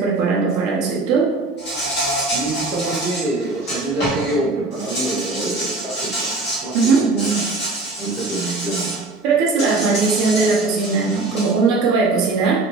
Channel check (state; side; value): quieter; left; 3.3 dB